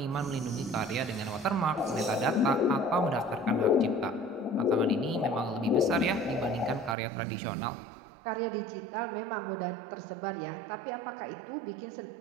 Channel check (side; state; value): left; drops out; at 7.0 s